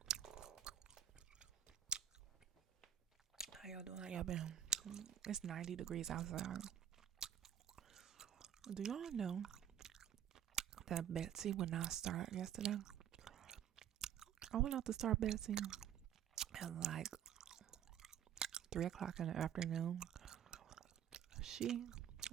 How y'all doing? How y'all been? It's 90 degrees outside. Do y'all know that Betsy would not start yesterday? I went out to start Betsy at like 3 o'clock in the afternoon. She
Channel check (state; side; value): quieter; left; 9.9 dB